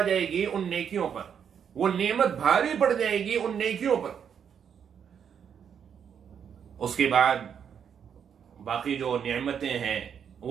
جائے گی ان نیکیوں پر، وہ نعمت بھاری پڑ جائے گی ان نیکیوں پر۔ اس کے بعد باقی جو نعمتیں ہیں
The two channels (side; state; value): left; quieter; 7.8 dB